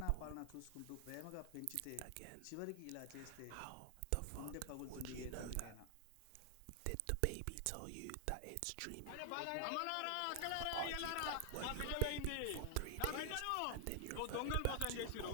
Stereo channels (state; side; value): different; both; correlation 0.00